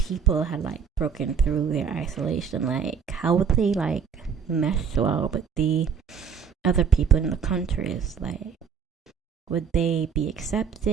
had like broken through their isolation? Like, how would they like mesh well with the other people in the countries? Like, would they be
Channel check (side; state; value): left; quieter; 6.8 dB